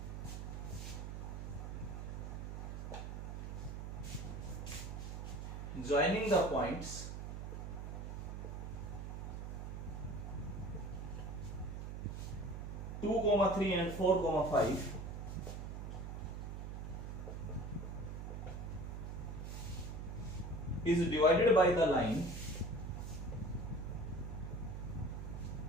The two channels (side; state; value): right; noise; hum, 6 dB below the sound